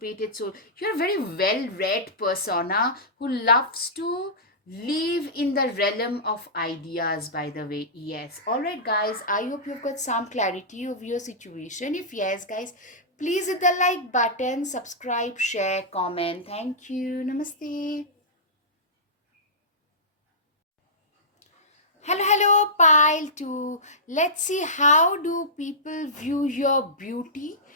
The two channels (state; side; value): normal; both; correlation -0.16